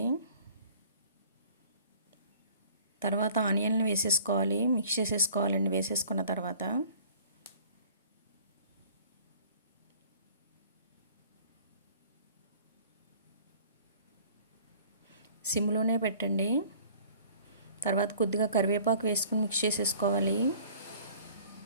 తర్వాత ఆనియన్లు వేసేసుకోవాలి, మిక్స్ చేసేసుకోవాలండి. వేసేసుకున్న తర్వాత సిమ్లోనే పెట్టండి. తర్వాత కొద్దిగా కరివేపాకు వేసుకుని మిక్స్ చేసేసుకోవాలి.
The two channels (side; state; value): both; inverted; correlation -0.51